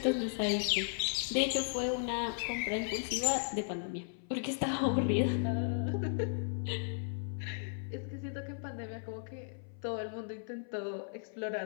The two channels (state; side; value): silent; right; 54 dB below the other